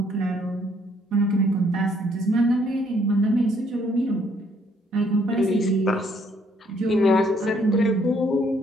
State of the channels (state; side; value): normal; both; correlation 0.67